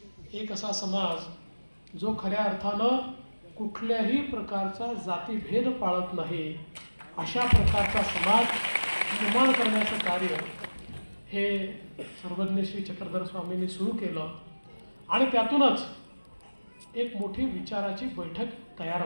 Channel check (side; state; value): both; inverted; correlation -1.00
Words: एक असा समाज जो खऱ्या अर्थानं कुठल्याही प्रकारचा जातीभेद पाळत नाही. अशा प्रकारचा समाज निर्माण करण्याचं कार्य हे सर्वज्ञ श्री चक्रधर स्वामींनी सुरू केलं. आणि त्यातूनच एक मोठी विचाराची बैठक